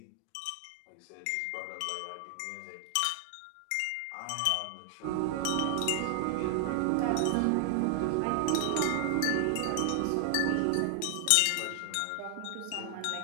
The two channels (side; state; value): both; different; correlation 0.00